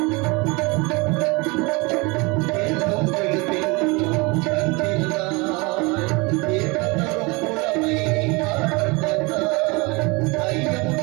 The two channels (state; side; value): quieter; left; 26.9 dB